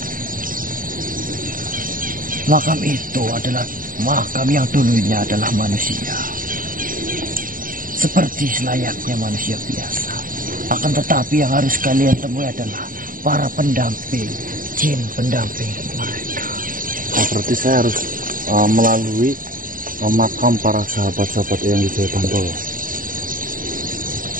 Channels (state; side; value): late; left; 0.40 ms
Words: Makam itu adalah makam yang dulunya adalah manusia, seperti selayaknya manusia biasa. Akan tetapi yang harus kalian temui adalah para pendamping, jin pendamping mereka. Oh, berarti saya harus melalui makam para sahabat-sahabat Eyang Wijaya Bantolo.